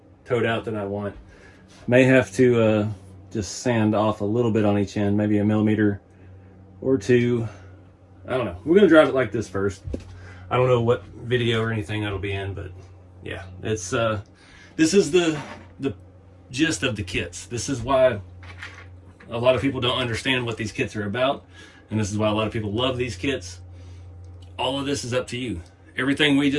toed out than I want. May have to just sand off a little bit on each end, maybe a millimeter or 2. I don't know. We're gonna drive it like this first. I don't know what video or anything that'll be in, but yeah, it's this is the gist of the kits. This is why a lot of people don't understand what these kits are about, and this is why a lot of people love these kits. All of this is up to you. Everything we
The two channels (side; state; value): both; identical; correlation 1.00